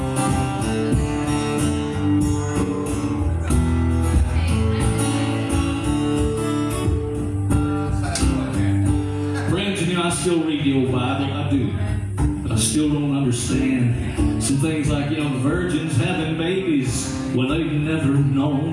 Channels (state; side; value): identical; both; correlation 1.00